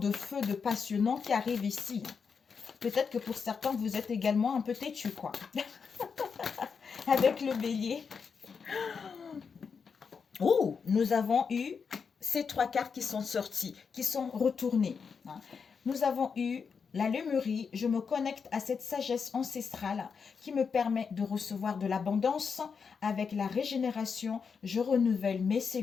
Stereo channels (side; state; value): right; quieter; 5.9 dB